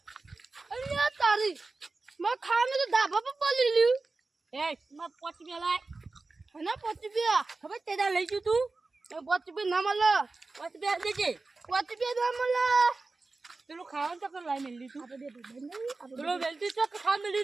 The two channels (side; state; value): left; quieter; 3.6 dB